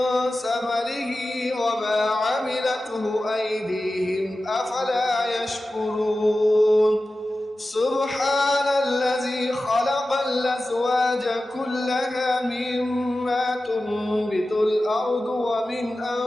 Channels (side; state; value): both; normal; correlation 0.94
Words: ثمره وما عملته أيديهم أفلا يشكرون سبحان الذي خلق الأزواج كلها مما تنبت الأرض ومن